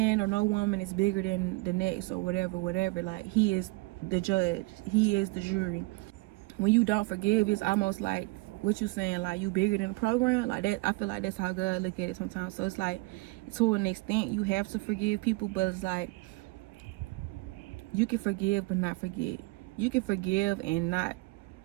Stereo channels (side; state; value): left; quieter; 23.6 dB